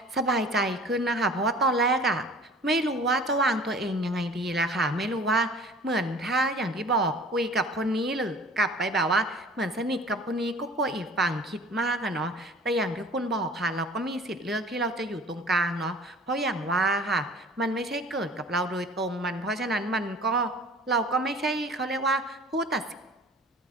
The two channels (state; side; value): normal; both; correlation 0.46